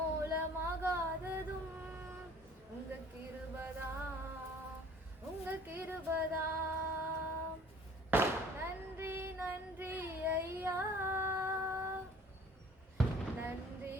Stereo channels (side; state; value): both; normal; correlation 0.51